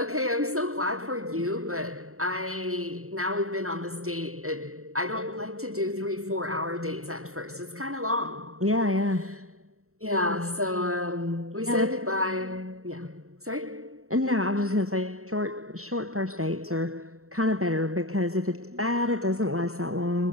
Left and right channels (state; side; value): late; left; 0.64 ms